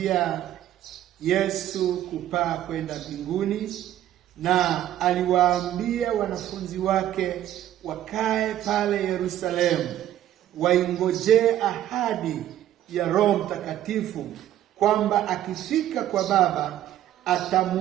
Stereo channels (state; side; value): quieter; left; 12.4 dB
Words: Yesu kupaa kwenda mbinguni, na aliwaambia wanafunzi wake wakae pale Yerusalemu, waingojee ahadi ya Roho Mtakatifu, kwamba akifika kwa Baba